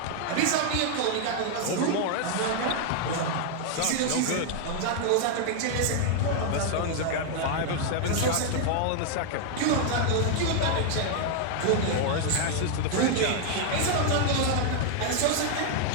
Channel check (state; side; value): different; both; correlation 0.00